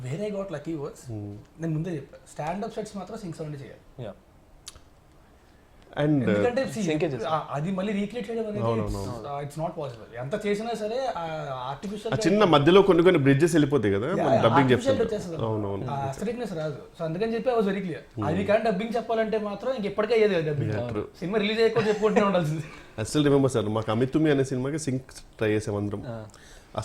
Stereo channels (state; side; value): identical; both; correlation 1.00